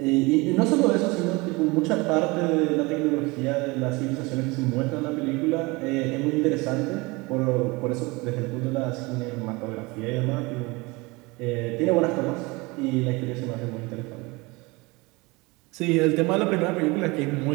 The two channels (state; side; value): quieter; left; 24.6 dB